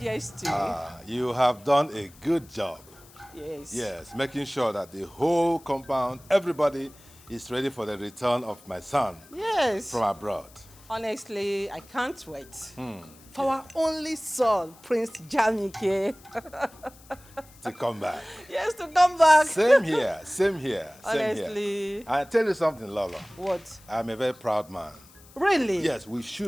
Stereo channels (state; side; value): noise; left; hiss, 24 dB below the sound